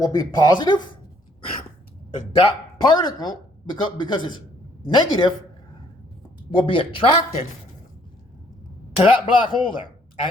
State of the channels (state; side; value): normal; both; correlation 0.64